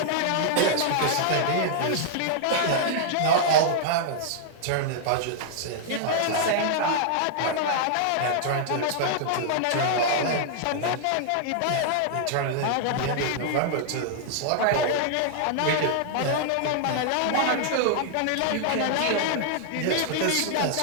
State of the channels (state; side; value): different; both; correlation -0.01